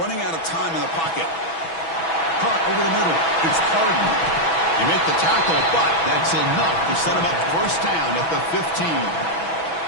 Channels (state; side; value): late; right; 6.1 ms